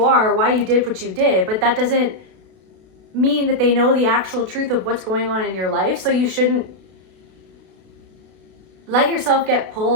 are, why you did what you did, but that doesn't mean that they know the actual truth of what's going on in your life. So you shouldn't let yourself get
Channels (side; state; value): left; late; 32 ms